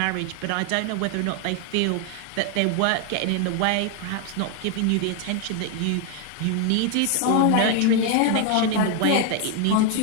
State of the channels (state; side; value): different; both; correlation 0.01